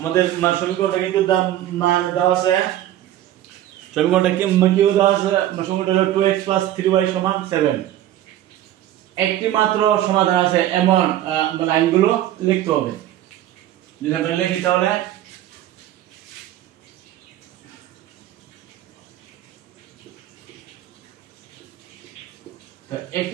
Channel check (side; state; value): left; quieter; 12.9 dB